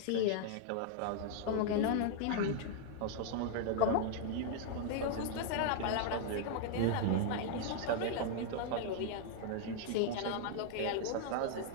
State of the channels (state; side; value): different; both; correlation 0.00